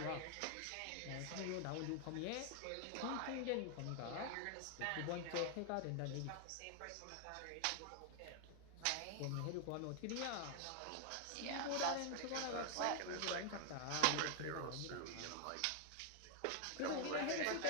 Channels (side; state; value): both; different; correlation 0.00